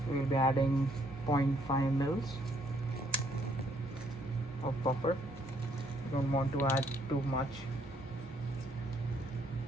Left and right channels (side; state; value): both; normal; correlation 0.68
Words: We'll be adding 0.5 mils of buffer. You don't want to add too much.